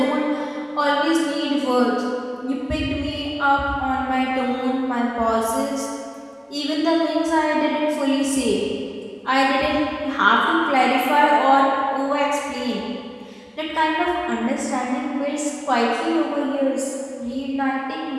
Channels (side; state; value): both; identical; correlation 1.00